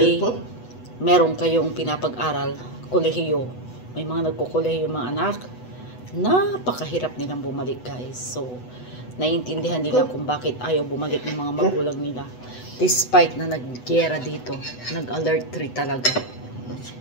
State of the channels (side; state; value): right; late; 8.0 ms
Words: meron kayong pinapag-aral, kolehiyo. May mga nagkukolehiyo mga anak, napakahirap nilang bumalik, guys. So, naiintindihan nila kung bakit ayaw bumalik ng mga magulang nila. Despite na nag-gera dito, nag-alert 3 talaga.